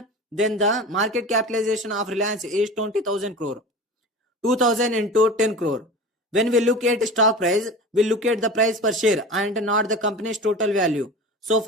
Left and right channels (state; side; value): normal; both; correlation 0.34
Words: then the market capitalization of Reliance is 20,000 crore. 2000 into 10 crore. When we look at stock price, we look at the price per share and not the company's total value. So